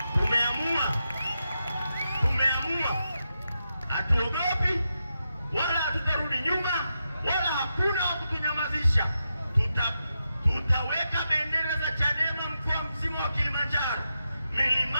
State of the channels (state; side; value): inverted; both; correlation -0.87